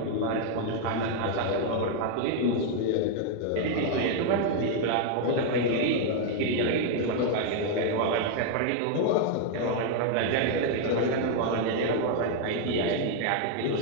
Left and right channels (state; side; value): different; both; correlation 0.00